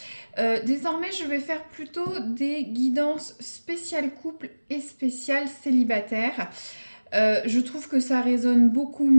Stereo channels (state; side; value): inverted; both; correlation -1.00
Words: Désormais, je vais faire plutôt des guidances spéciales couple et spéciales célibataire. Je trouve que ça résonne beaucoup